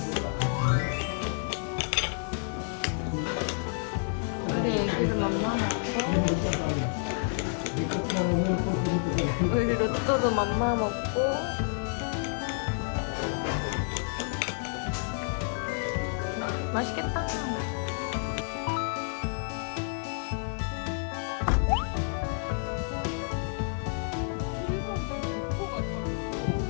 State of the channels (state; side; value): silent; right; 58 dB below the other